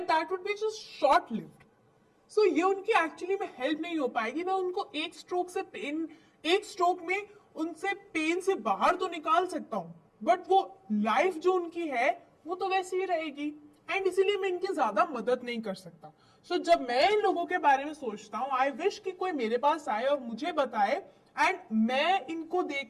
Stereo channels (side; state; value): both; identical; correlation 1.00